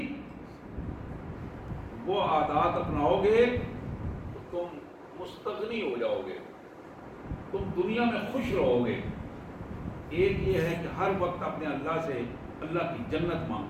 وہ عادات اپناؤ گے تم مستغنی ہو جاؤ گے، تم دنیا میں خوش رہو گے۔ ایک یہ ہے کہ ہر وقت اپنے اللہ سے اللہ کی جنت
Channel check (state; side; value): identical; both; correlation 1.00